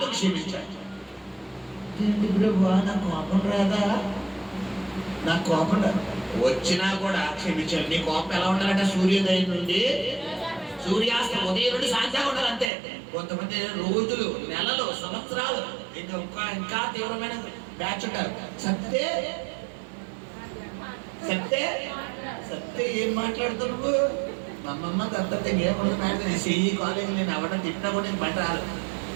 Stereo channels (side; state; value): left; drops out; at 12.7 s